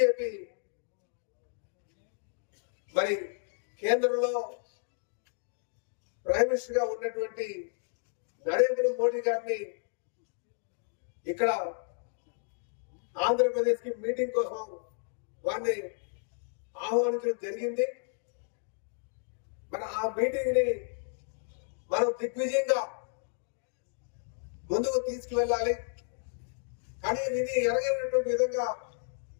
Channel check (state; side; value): silent; right; digital silence